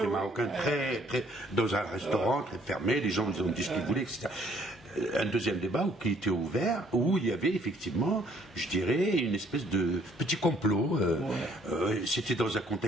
marocaine, très, dans un restaurant très fermé. Les gens ont dit ce qu'ils voulaient, etc. Un deuxième débat qui était ouvert, où il y avait effectivement, je dirais, une espèce de petit complot. C'était dans un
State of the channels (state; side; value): normal; both; correlation 0.63